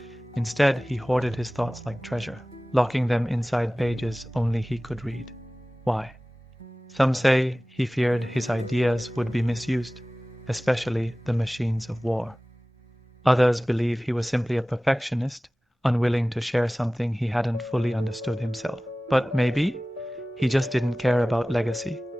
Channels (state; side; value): normal; both; correlation 0.98